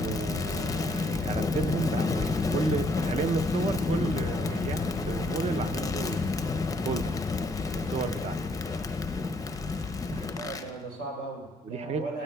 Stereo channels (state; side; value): normal; both; correlation 0.68